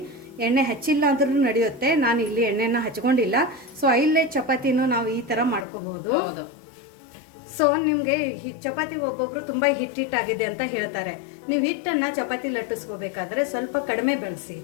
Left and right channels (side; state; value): right; drops out; at 5.7 s